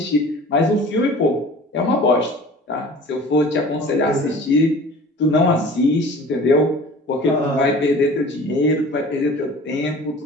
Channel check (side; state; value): both; normal; correlation 0.43